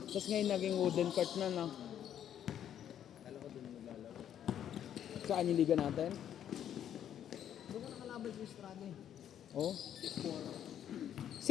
Tapos ngayon naging wooden court na, no? Kala ko doon naglalaro. Saan yung liga natin? Doon ka nakalaban sa Estrada eh. Oh. 6-4.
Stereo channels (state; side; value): quieter; right; 10.0 dB